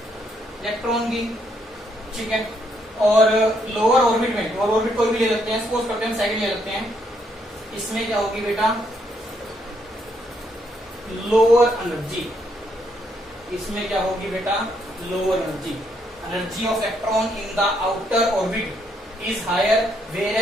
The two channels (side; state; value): both; normal; correlation 0.73